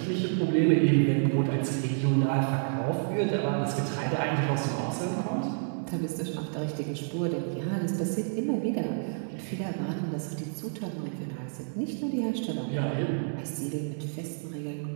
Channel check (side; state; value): left; silent; digital silence